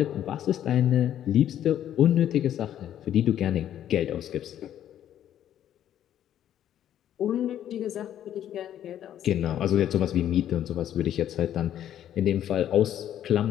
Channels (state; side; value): quieter; right; 10.9 dB